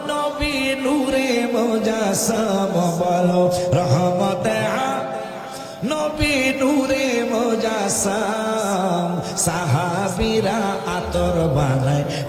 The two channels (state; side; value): identical; both; correlation 1.00